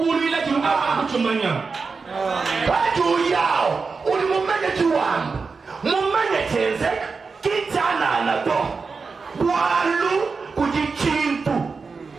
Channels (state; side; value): quieter; left; 4.7 dB